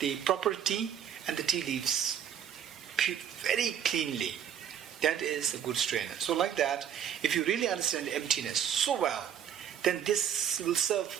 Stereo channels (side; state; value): left; quieter; 9.2 dB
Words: proper tea and the tea leaves very cleanly. That is a good strainer. So like that, if you really understand emptiness so well, then this will